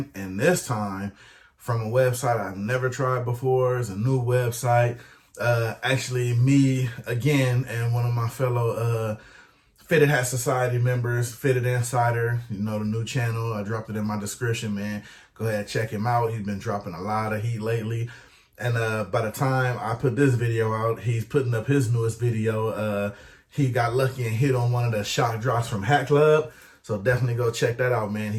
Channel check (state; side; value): identical; both; correlation 1.00